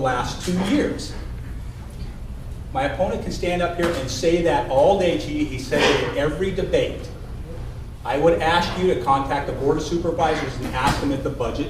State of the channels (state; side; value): identical; both; correlation 1.00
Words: 2 years. My opponent can stand up here and say that all day to you. He said it in every debate. I would ask you to contact the Board of Supervisors and ask them if the budget